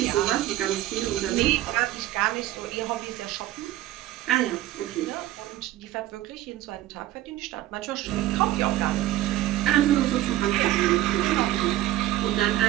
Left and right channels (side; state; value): left; quieter; 14.7 dB